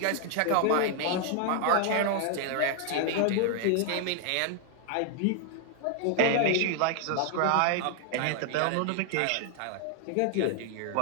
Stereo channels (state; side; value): different; both; correlation 0.00